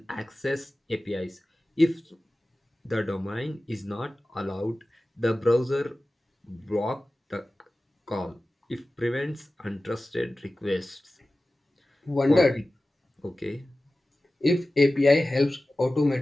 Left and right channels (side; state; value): both; normal; correlation 0.96